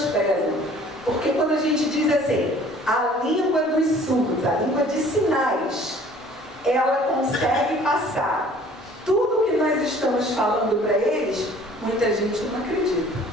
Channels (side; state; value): both; normal; correlation 0.52